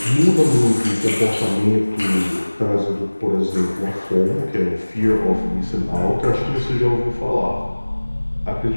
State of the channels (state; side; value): inverted; both; correlation -1.00